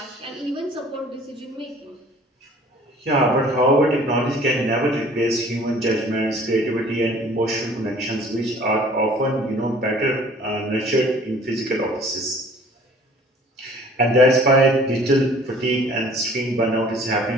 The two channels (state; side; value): normal; both; correlation 0.52